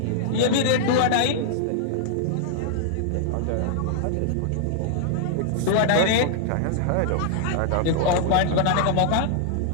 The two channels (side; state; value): both; different; correlation -0.01